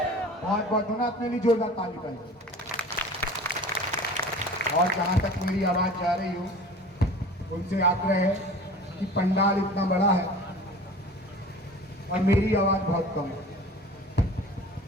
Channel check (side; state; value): both; normal; correlation 0.41